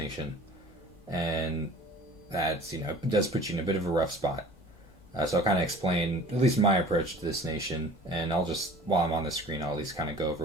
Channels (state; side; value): normal; both; correlation 0.45